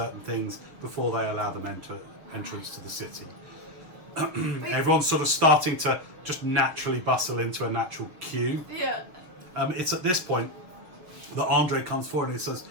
things before they allow them entrance to the city. Everyone's sort of starting to just naturally bustle into a natural queue. Yeah. It's at this point that Andre comes forward and he says,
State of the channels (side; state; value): left; late; 6.0 ms